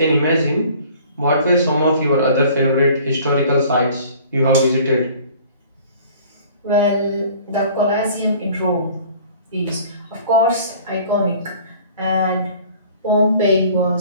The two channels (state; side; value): inverted; both; correlation -0.50